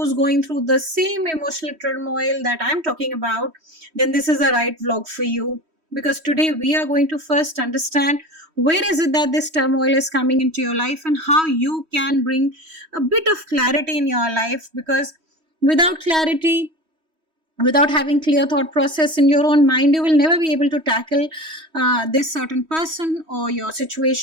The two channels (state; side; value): late; left; 3.1 ms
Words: going through the same emotional turmoil that I'm talking about, then this is the right vlog for you. Because today we are going to first understand where is it that this turmoil is coming into your life and how you can bring a bit of clarity in your life. Because without clarity, without having clear thought process in your own mind, you will never be able to tackle this certain person or your